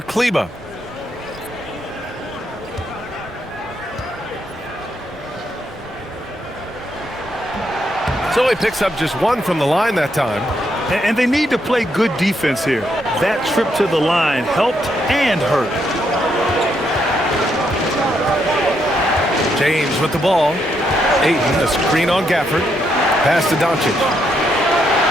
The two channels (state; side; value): normal; both; correlation 0.77